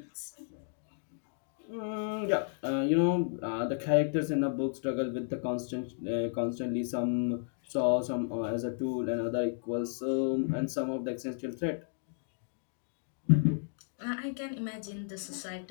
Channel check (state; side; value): silent; right; digital silence